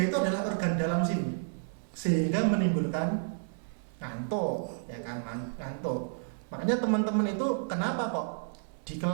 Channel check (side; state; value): left; silent; 57 dB below the other